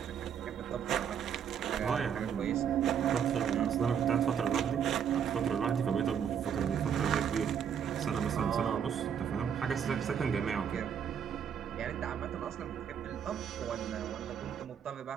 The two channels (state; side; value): quieter; left; 8.1 dB